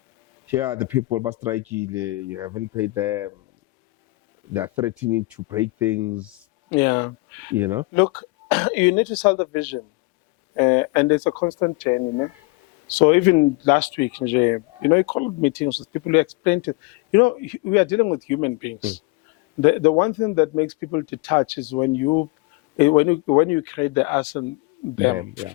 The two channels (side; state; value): right; quieter; 23.6 dB